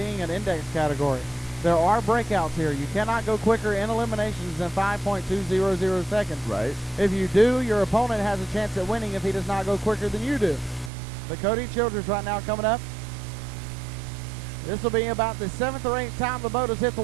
an index category. There are breakouts here. You cannot go quicker in eliminations than 5.200 seconds. Right. If you do, your opponent has a chance at winning if he does not go quicker than you do. But Cody Childress right now coming up. This will be about the 7th or 8th time the boat has hit the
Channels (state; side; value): drops out; left; at 10.9 s